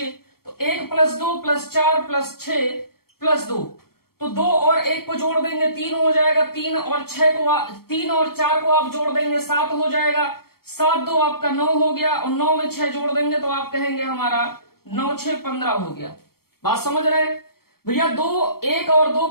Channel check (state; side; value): late; right; 0.94 ms